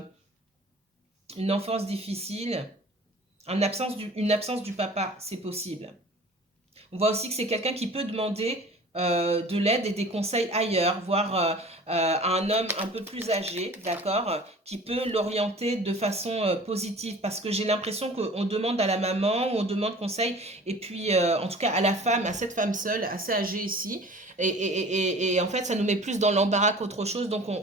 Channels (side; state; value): both; normal; correlation 0.44